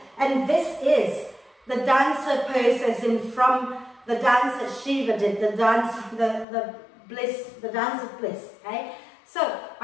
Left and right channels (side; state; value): right; drops out; at 6.5 s